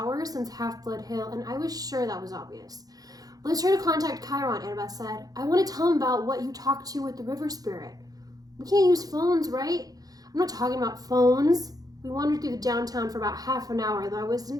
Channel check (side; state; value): left; late; 0.18 ms